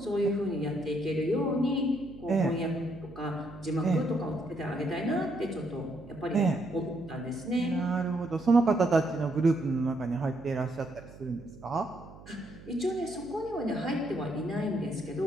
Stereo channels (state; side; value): noise; right; hum, 18 dB below the sound